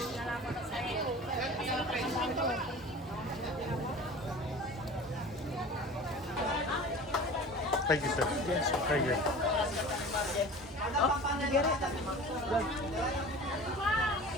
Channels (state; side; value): normal; both; correlation 0.39